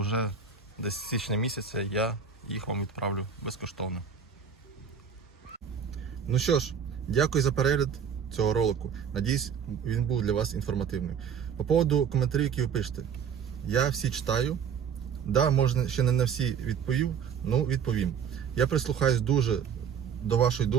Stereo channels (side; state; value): left; quieter; 7.1 dB